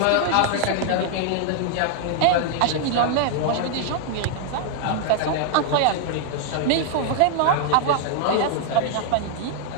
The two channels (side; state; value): both; different; correlation 0.00